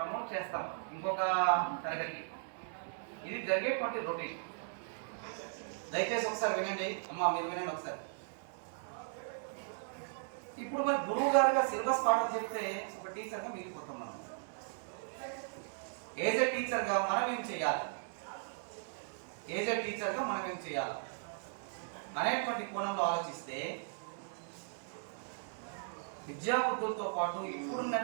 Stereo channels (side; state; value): left; silent; digital silence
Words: చేస్తాం ఇంకొక తరగతికి. ఇది జరిగేటువంటి రొటీన్. దయచేసి ఒకసారి వినండి అమ్మా, మీరు వినండి ఒకసారి. ఇప్పుడు మరి గురువు గారుగా సిలబస్ పాఠం చెప్తే ఒక టీచర్గా మిగిలిపోతాం మనం. ఏజ్ ఏ టీచర్గా మనం ఏం చేయాలి, ఏజ్ ఏ టీచర్గా మనం ఏం చేయాలి అనేటువంటి కోణంలో ఆలోచిస్తే విద్యాబుద్ధులతో పాటు